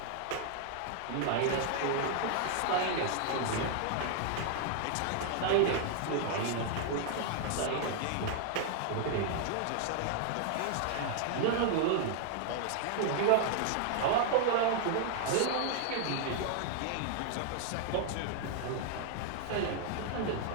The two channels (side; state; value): both; different; correlation 0.00